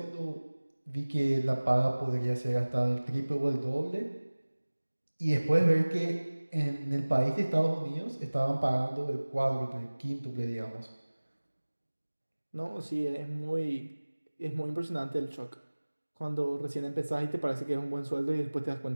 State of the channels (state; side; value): inverted; both; correlation -1.00